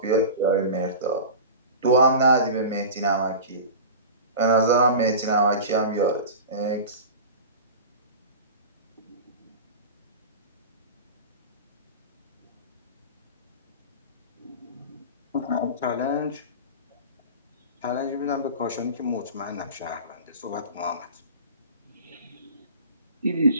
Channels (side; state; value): both; inverted; correlation -0.32